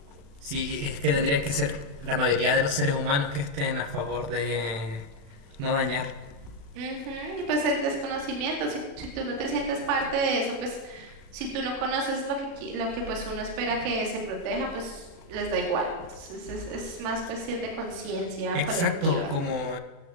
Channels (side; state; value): left; late; 35 ms